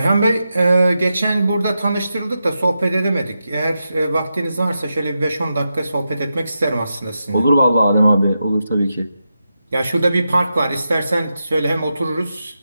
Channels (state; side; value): inverted; both; correlation -0.88